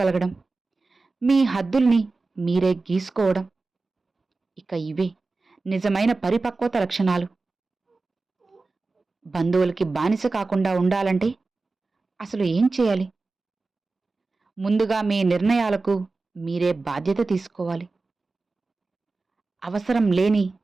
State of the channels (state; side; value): quieter; left; 3.7 dB